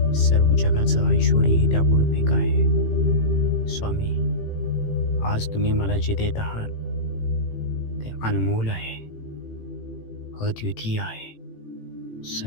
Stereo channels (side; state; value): right; late; 18 ms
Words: सर्व जगाचं ऐश्वर्य ही त्यापुढे फिक आहे. स्वामी, आज तुम्ही मला जे देत आहात ते अनमोल आहे, अद्वितीय आहे,